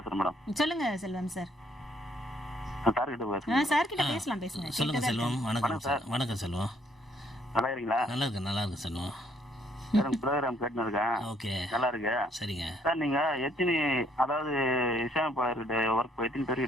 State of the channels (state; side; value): normal; both; correlation 0.66